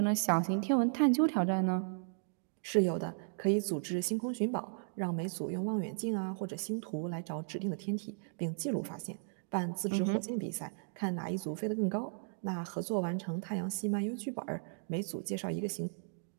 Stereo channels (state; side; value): silent; left; digital silence